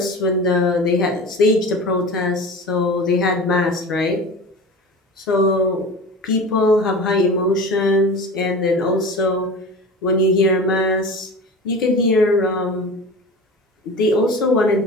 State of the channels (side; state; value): both; normal; correlation 0.34